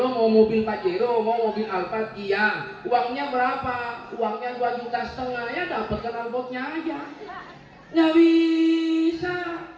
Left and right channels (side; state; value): both; identical; correlation 1.00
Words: mau mobil Pajero, mau mobil Alphard? Iya. Uangnya berapa? Uangnya 2,5 juta, ya dapat knalpotnya aja. Nggak bisa.